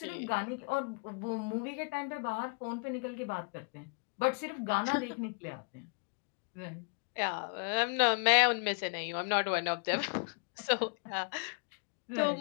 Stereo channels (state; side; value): quieter; right; 37.4 dB